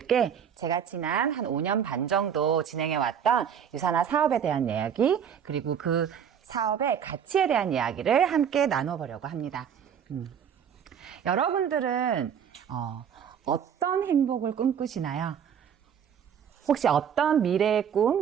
제가 지난 한 5년 반 정도 진행해왔던 유사나 사업에 대한 이야기, 그리고 그 사업의 가치에 대한 이야기를 함께 나눠보려고 합니다. 여러분들은 어떤 행복을 꿈꾸시나요? 혹시 어떤 미래의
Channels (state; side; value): quieter; left; 8.2 dB